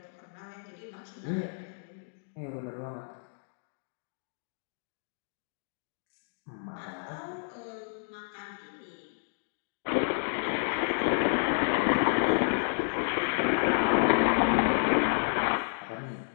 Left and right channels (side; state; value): right; silent; digital silence